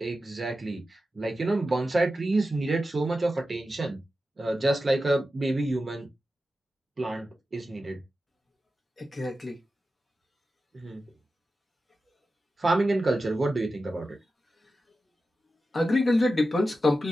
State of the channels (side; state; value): both; normal; correlation 0.92